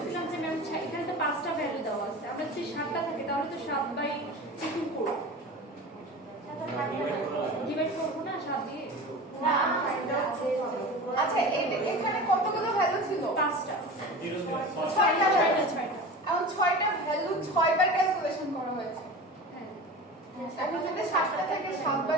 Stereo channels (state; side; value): normal; both; correlation 0.33